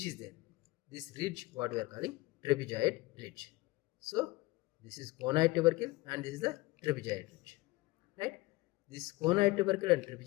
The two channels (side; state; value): right; quieter; 21.2 dB